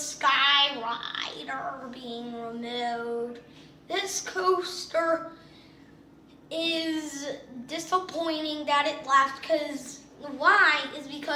being removed. This coaster is disappointing that it left, because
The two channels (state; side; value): identical; both; correlation 1.00